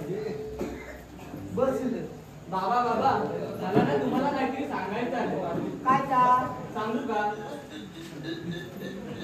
बस बाबा बाबा मला ना तुम्हाला काहीतरी सांगायचं आहे. काय तर? सांगू का?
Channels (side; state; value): both; identical; correlation 1.00